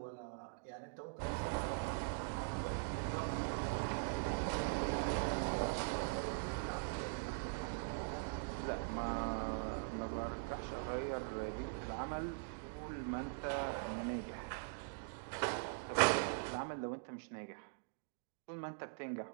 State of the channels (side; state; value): left; silent; digital silence